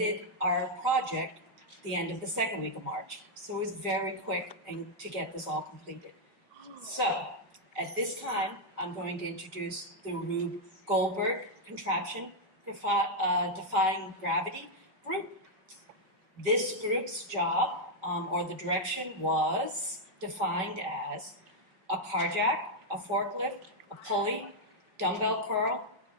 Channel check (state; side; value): late; left; 5.3 ms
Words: our project the end of the second week of March. So it was very quick to get this all completed. So at this time, I'm going to introduce the Rube Goldberg Contraption Defying Gravity group. This group's job, or the direction, was defined as a car jack, a forklift, a pulley, dumbbell curl.